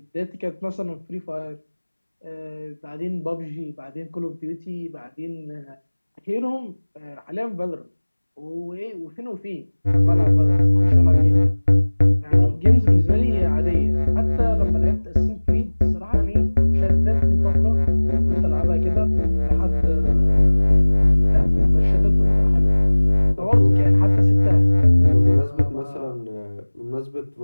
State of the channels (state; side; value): inverted; both; correlation -1.00